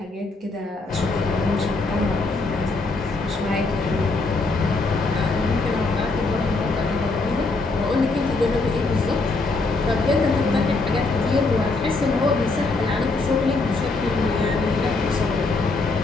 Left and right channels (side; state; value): right; quieter; 3.5 dB